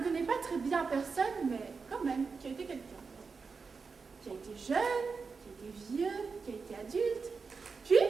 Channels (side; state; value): left; quieter; 4.9 dB